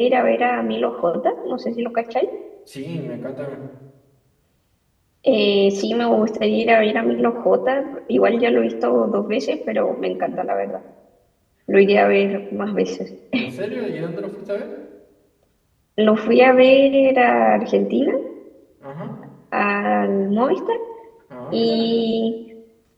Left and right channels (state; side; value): identical; both; correlation 1.00